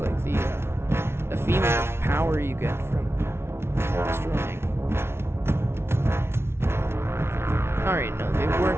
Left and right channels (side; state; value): left; late; 0.12 ms